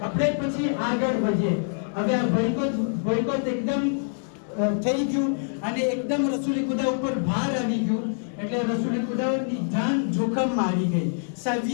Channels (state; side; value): silent; right; digital silence